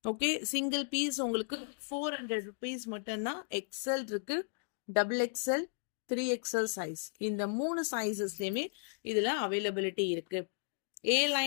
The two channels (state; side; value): silent; right; digital silence